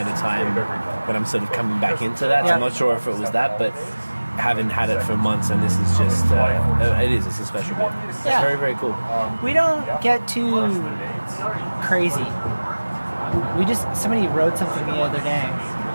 a time when I'm sort of coming back into that. So I'm not sure if it was that, but haven't had it for months, and this is just it's a special beer. It's very, very cool. We don't get too crazy. Somebody wrote something the other day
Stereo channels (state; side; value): inverted; both; correlation -1.00